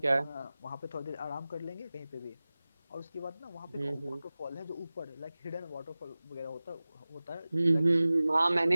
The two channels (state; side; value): inverted; both; correlation -0.97